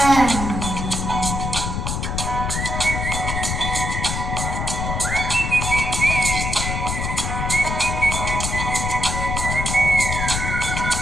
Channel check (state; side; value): noise; left; rumble, 2 dB below the sound